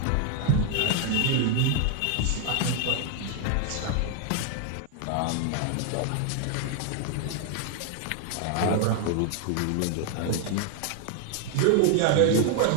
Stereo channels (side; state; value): both; different; correlation 0.00